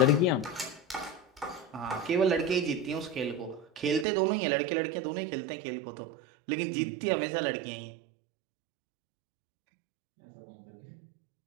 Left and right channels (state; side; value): drops out; left; at 4.0 s